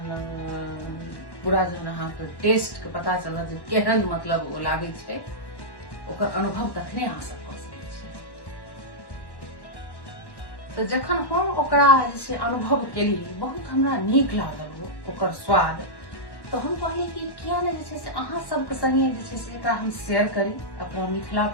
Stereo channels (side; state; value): right; late; 1.1 ms